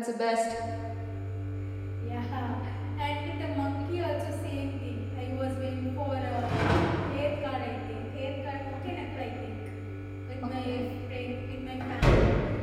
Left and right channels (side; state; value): both; identical; correlation 1.00